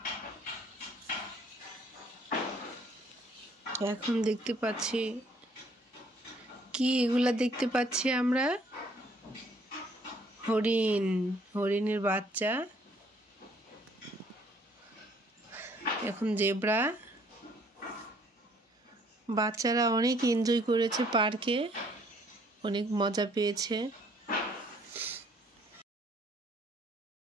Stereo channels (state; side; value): normal; both; correlation 0.62